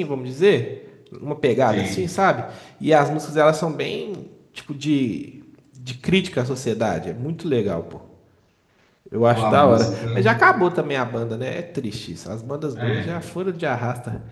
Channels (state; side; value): identical; both; correlation 1.00